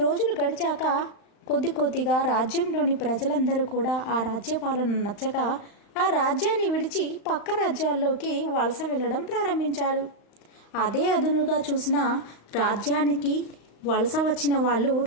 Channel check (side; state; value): right; late; 35 ms